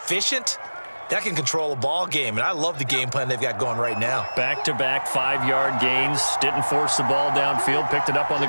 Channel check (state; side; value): inverted; both; correlation -1.00